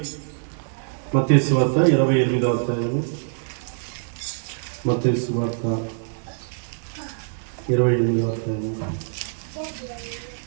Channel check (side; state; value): left; silent; digital silence